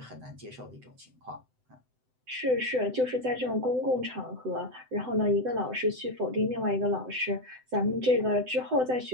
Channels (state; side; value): late; left; 7.9 ms